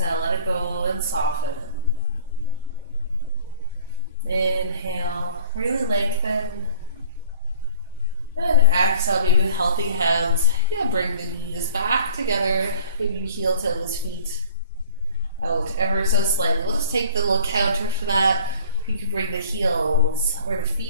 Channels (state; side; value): inverted; both; correlation -0.48